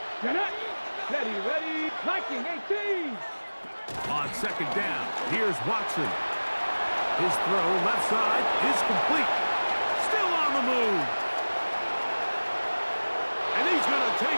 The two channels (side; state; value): both; inverted; correlation -1.00